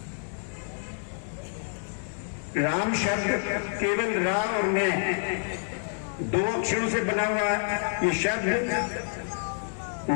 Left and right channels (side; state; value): right; silent; digital silence